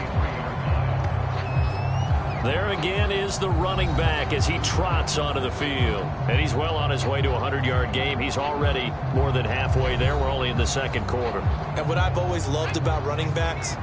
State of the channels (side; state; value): both; identical; correlation 1.00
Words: There again is the running back as he trots onto the field. And he's well on his way to a 100-yard game. He's already more than halfway there. We're only in the second quarter. And what I've always loved about running backs